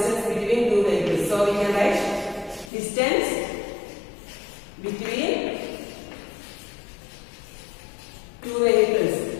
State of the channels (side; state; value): right; drops out; at 2.7 s